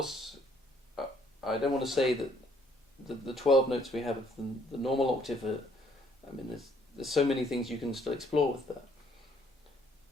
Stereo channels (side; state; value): both; normal; correlation 0.64